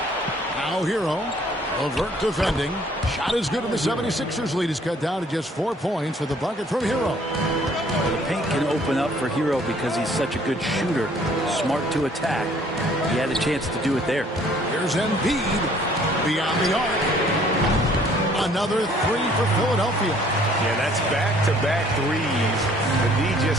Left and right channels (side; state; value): both; normal; correlation 0.59